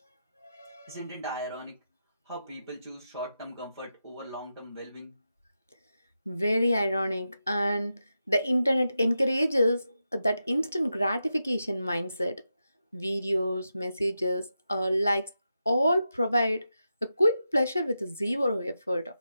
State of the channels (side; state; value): both; inverted; correlation -0.88